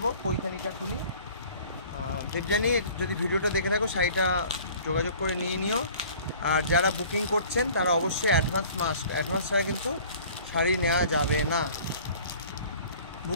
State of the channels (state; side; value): inverted; both; correlation -0.48